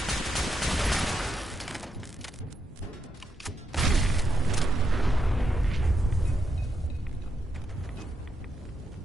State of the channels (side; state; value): both; normal; correlation 0.82